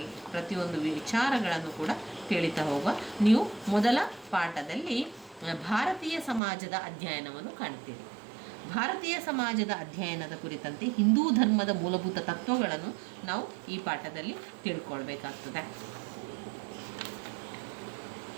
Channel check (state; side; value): drops out; left; at 6.4 s